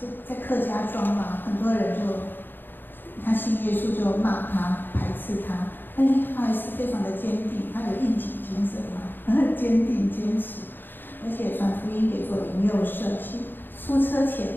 在客家庄很多人他信耶稣就骂他、排斥他，但是他还是非常的坚定，他有应景精神很坚定、坚持，而且传福音给做灵幼社，出车前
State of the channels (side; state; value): right; late; 0.095 ms